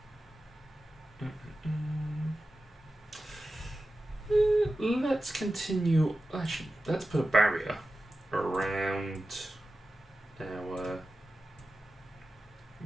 Let's continue. Actually, let's put a barrier around our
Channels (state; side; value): normal; both; correlation 0.94